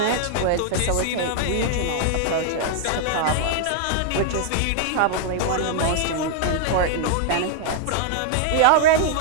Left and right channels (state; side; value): different; both; correlation 0.00